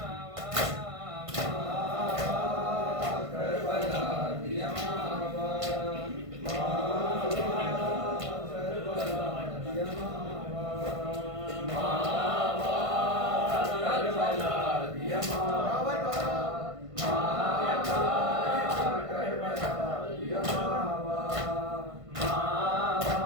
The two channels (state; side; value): late; left; 1.5 ms